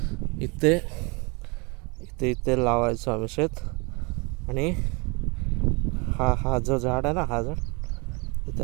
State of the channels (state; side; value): quieter; left; 29.7 dB